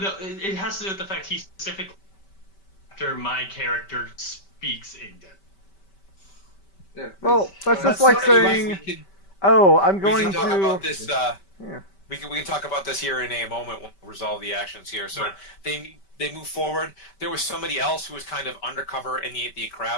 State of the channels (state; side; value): late; right; 5.2 ms